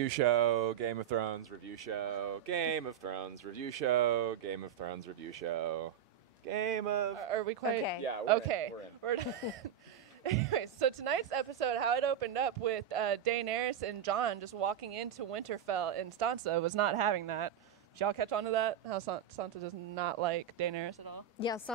show, Game of Thrones review show, Game of Thrones review show, Game of Thrones review show, Game of... Are we quite... Okay. Yeah, we're in. We're in. Anyway, so tonight's episode, how it opened up with Daenerys and Jon just walking into Winterfell, and Sansa was not having that. Did y'all catch on to that? How Sansa does not like Daenerys at all? Yeah,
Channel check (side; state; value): left; quieter; 9.2 dB